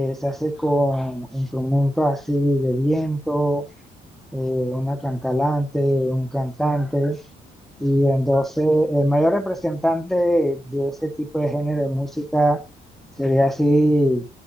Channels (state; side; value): normal; both; correlation 0.92